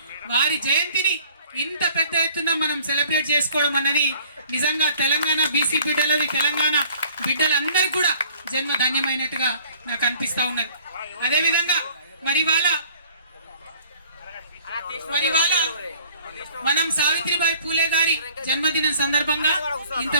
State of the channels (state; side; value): inverted; both; correlation -0.54